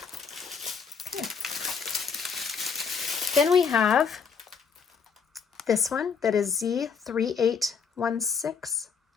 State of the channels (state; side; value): quieter; right; 5.9 dB